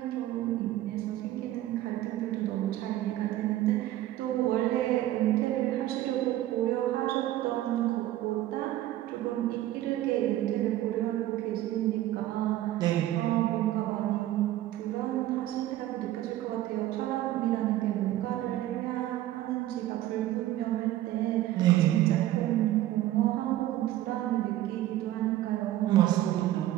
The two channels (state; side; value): quieter; left; 14.3 dB